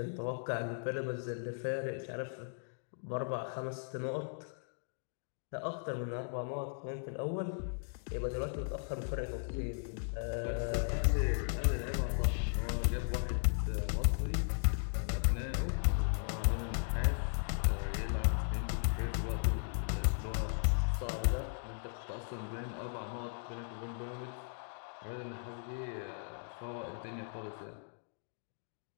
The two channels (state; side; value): silent; right; digital silence